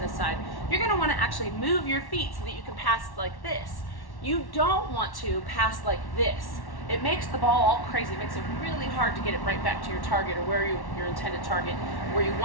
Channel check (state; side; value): late; right; 1.1 ms